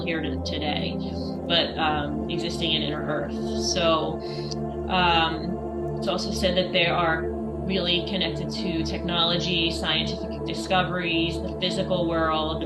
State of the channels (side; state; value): both; identical; correlation 1.00